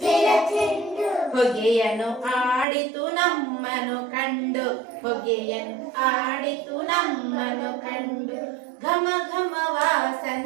ಚೆಂಡು. ಹೊಗೆಯನ್ನು ಆಡಿತು ನಮ್ಮನು ಕಂಡು, ಹೊಗೆಯನ್ನು ಆಡಿತು ನಮ್ಮನು ಕಂಡು. ಘಮ ಘಮ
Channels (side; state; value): left; drops out; at 2.7 s